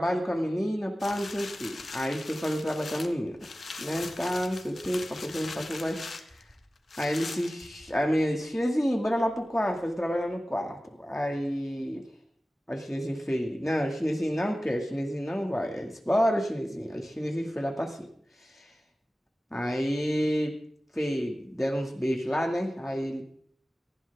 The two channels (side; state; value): both; normal; correlation 0.96